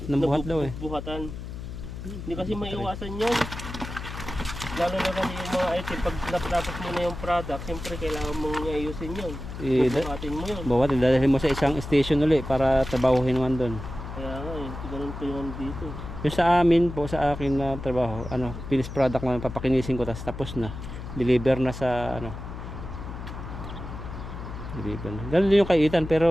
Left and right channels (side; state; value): left; noise; hum, 9 dB below the sound